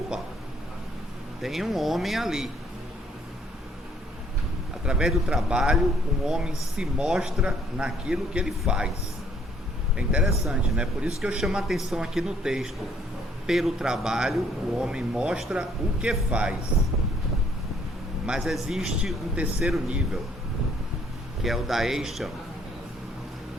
tem um homem ali. Através do trabalho, um homem se mostra naquilo que ele faz. É interessante, né? Por isso que eu chamo a atenção aqui no texto. Pelo trabalho, o homem mostra o que faz. Mas existe um terceiro nível, que é o da Eisham,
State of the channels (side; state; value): both; normal; correlation 0.64